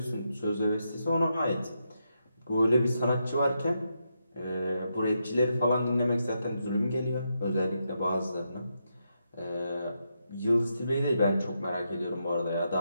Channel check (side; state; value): both; inverted; correlation -0.83